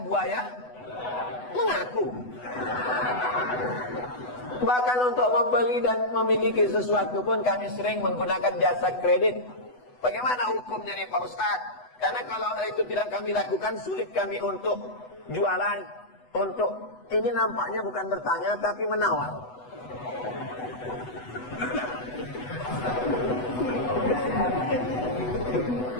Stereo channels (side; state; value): right; late; 8.0 ms